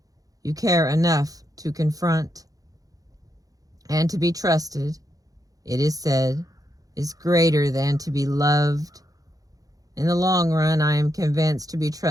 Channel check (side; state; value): left; late; 0.17 ms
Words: You care enough to confront, and to be trusted, it is said, is greater than to be loved. In the long run, I am convinced to be